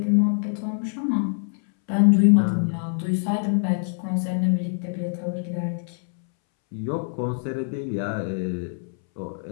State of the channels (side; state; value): right; silent; 62 dB below the other